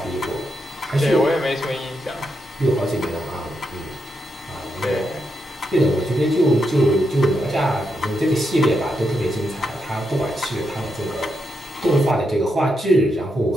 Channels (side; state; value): both; normal; correlation 0.83